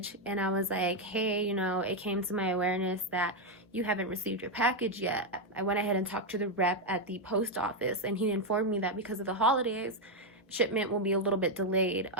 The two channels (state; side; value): normal; both; correlation 0.02